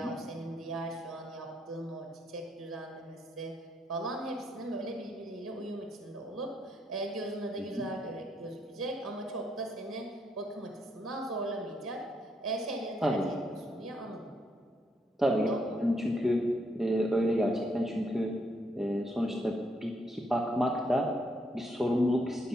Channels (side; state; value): both; normal; correlation 0.75